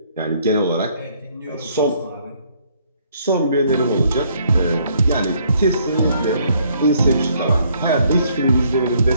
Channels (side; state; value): both; inverted; correlation -0.66